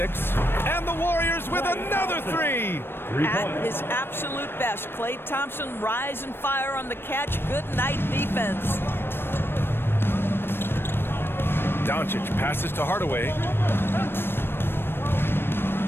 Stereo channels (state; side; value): late; right; 0.10 ms